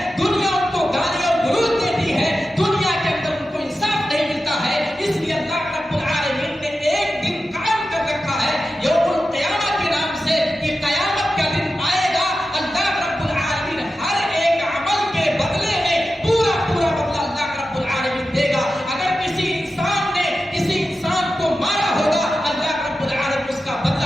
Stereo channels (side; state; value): both; normal; correlation 0.92